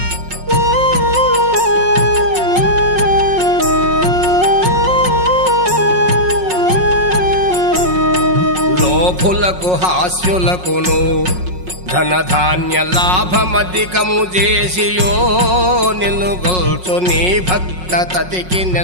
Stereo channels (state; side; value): late; left; 5.5 ms